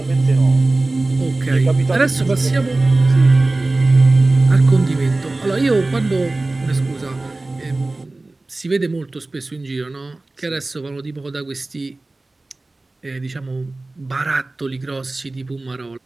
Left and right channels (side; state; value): left; quieter; 3.0 dB